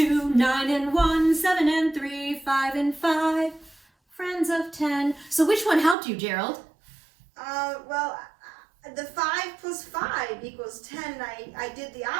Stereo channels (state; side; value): drops out; left; at 6.0 s